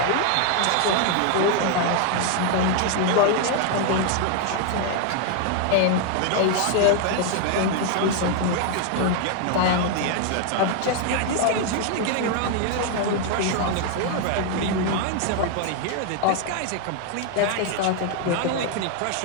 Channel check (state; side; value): different; both; correlation 0.00